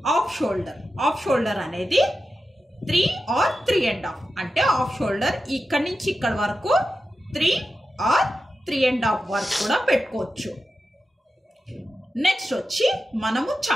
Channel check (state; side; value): normal; both; correlation 0.91